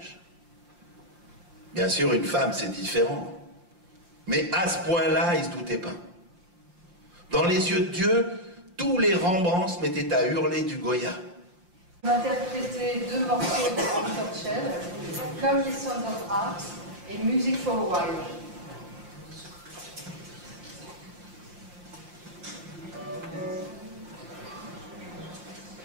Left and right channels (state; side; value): late; left; 5.7 ms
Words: Bien sûr, une femme, c'est différent. Mais à ce point-là, il ne se doutait pas. Dans les yeux de Dieu, tous les Rembrandts se mettaient à hurler du Goya. On a interprété 2 morceaux de Anton Chell, comme les Sons of Art et Music for a While.